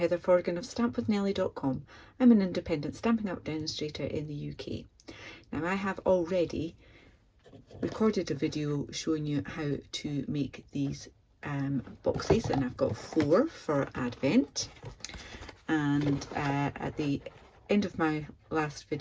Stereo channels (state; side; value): identical; both; correlation 1.00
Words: Forgan of stampwithnellie.com. I'm an independent Stampin' Up demonstrator in the UK. Now I have already recorded a video showing you how to make these boxes, and I've got 4 for Advent. And at the end of my last